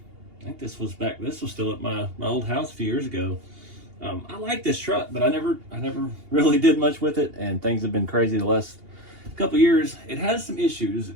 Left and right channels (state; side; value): late; left; 2.8 ms